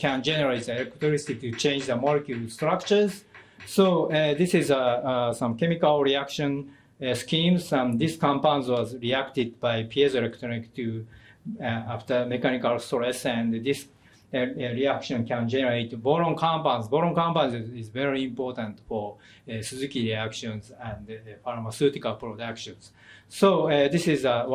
generate the electricity to change the molecule structures. So this is some chemical reaction schemes, and this compounds was reacted by piezoelectric to after mechanical stress, and this reaction can generate boron compounds. Boron compounds is very important for Suzuki reactions and pharmaceutical productions. So this is a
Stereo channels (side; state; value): both; identical; correlation 1.00